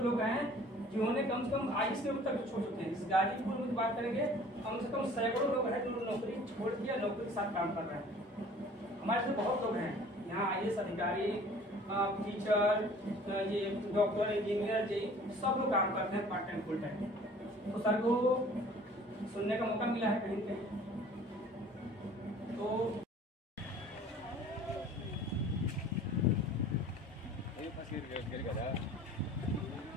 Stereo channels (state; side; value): normal; both; correlation 0.49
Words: हैं जिन्होंने कम से कम 22 किलोमीटर तक छोड़ चुके हैं। इस गाजीपुर में बात करेंगे कम से कम सैकड़ों लोग हैं जो नौकरी छोड़ दिया, नौकरी के साथ काम कर रहे हैं। हमारे से बहुत लोग हैं यहाँ, IAS अधिकारी, टीचर, ये डॉक्टर, इंजीनियर जी, सब लोग काम करते हैं पार्ट टाइम फुल टाइम। तो सर को सुनने का मौका मिला है कहीं पे। तो